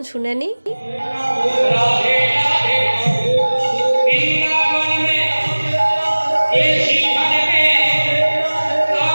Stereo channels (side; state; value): both; inverted; correlation -1.00